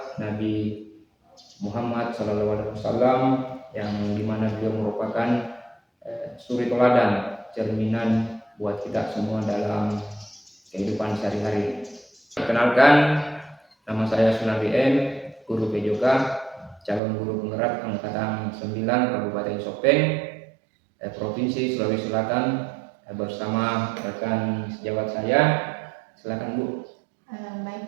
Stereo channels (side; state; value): left; drops out; at 17.0 s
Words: Nabi Muhammad SAW yang dimana beliau merupakan suri teladan, cerminan buat kita semua dalam kehidupan sehari-hari. Perkenalkan, nama saya Sunardi M, guru PJK, calon guru penggerak angkatan 9 Kabupaten Sopeng, Provinsi Sulawesi Selatan, bersama rekan sejawat saya. Silakan Bu.